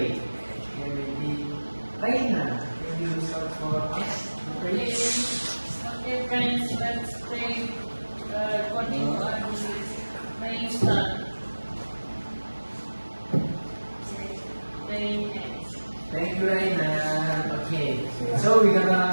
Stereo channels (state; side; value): inverted; both; correlation -1.00